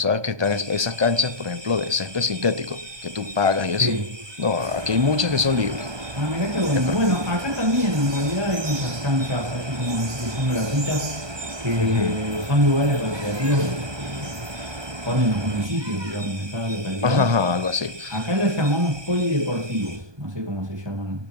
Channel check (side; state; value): left; late; 1.2 ms